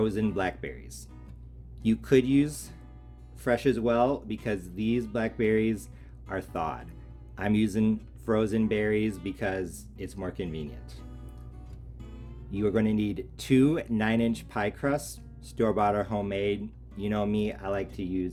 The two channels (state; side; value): identical; both; correlation 1.00